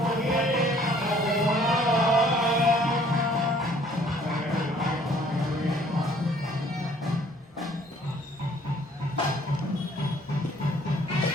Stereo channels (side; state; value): both; normal; correlation 0.58